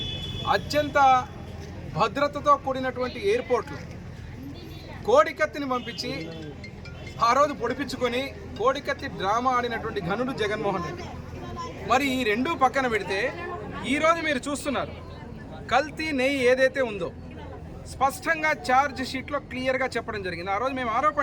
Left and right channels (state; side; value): identical; both; correlation 1.00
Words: అత్యంత భద్రతతో కూడినటువంటి ఎయిర్పోర్ట్లు కోడికత్తిని పంపించి ఆ రోజు పొడిపించుకొని కోడికత్తి డ్రామా ఆడినటువంటి ఘనుడు జగన్మోహన్ రెడ్డి. మరి ఈ రెండూ పక్కన పెడితే ఈరోజు మీరు చూస్తున్నారు కల్తీ నెయ్యి ఏదైతే ఉందో స్పష్టంగా ఛార్జ్ షీట్లో క్లియర్గా చెప్పడం జరిగింది. ఆ రోజు మేము